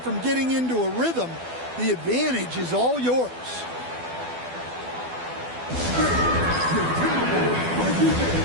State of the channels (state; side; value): late; left; 12 ms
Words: getting into a rhythm, the advantage is all yours.